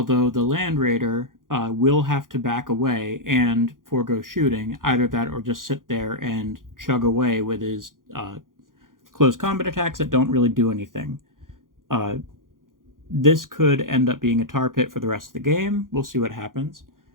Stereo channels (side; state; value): left; late; 0.90 ms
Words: the Land Raider will have to back away and forego shooting, either that or just sit there and chug away with his close combat attacks that don't really do anything. This could end up being a tar pit for the rest of the game. We'll see what happens.